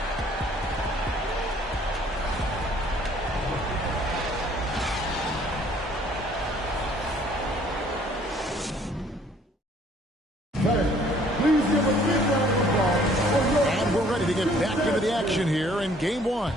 Here in game one.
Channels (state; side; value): normal; both; correlation 0.59